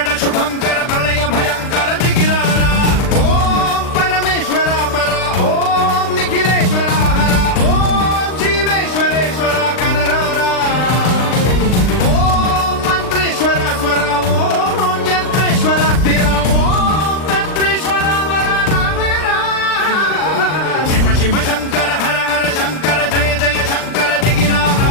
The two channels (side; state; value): right; late; 39 ms